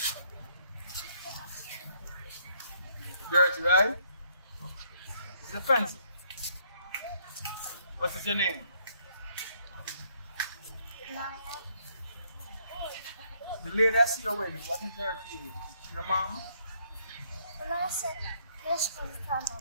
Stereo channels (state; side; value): inverted; both; correlation -0.68